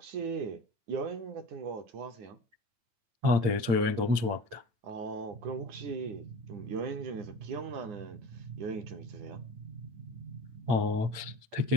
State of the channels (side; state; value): left; late; 8.8 ms